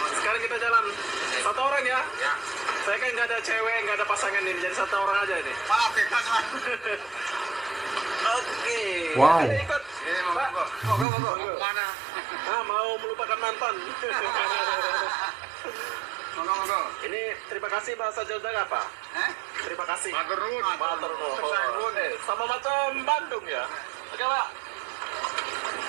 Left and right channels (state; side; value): drops out; left; at 11.1 s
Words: sekarang kita jalan. Satu orang ya? Ya. Saya kan nggak ada cewek, nggak ada pasangan ini, jadi satu orang aja ini. Maaf, bebas, Mas. Oke. Wow. Ayo ikut. Ini Pak. mau mana? Mau melupakan mantan. Monggo. Ini terima kasih bahasa Jogja apa? Terima kasih. Matur nuwun. Matur nuwun. Matur nuwun. Sama macam Bandung ya. Oke, Pak.